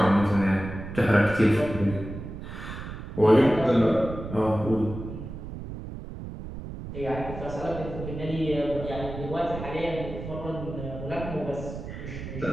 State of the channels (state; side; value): noise; right; rumble, 9 dB below the sound